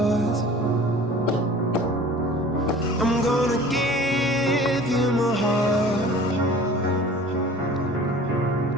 I'm gonna give you my heart,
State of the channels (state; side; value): normal; both; correlation 0.44